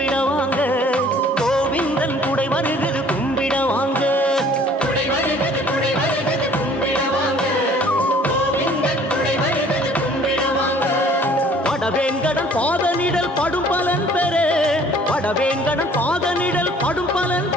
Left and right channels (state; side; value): normal; both; correlation 0.54